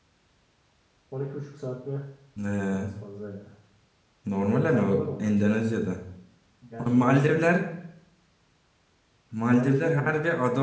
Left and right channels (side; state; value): both; identical; correlation 1.00